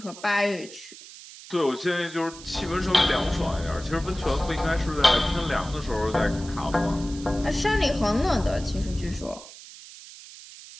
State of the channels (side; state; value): right; noise; hiss, 17 dB below the sound